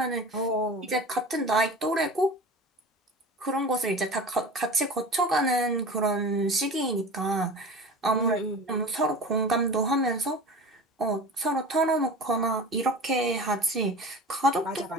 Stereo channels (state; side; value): normal; both; correlation 0.36